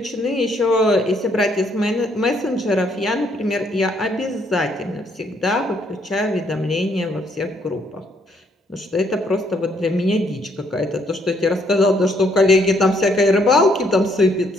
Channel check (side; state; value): both; normal; correlation 0.69